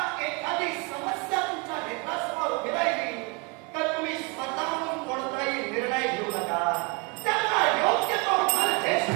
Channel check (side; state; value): left; quieter; 28.8 dB